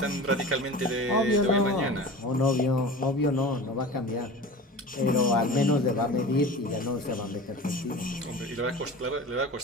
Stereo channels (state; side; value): normal; both; correlation 0.35